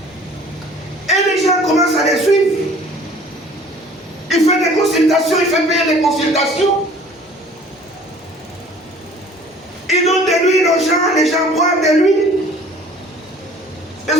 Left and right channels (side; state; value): both; normal; correlation 0.50